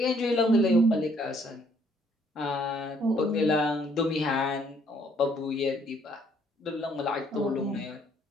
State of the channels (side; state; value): both; normal; correlation 0.65